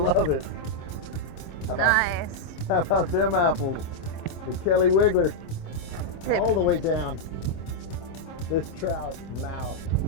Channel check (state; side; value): late; right; 26 ms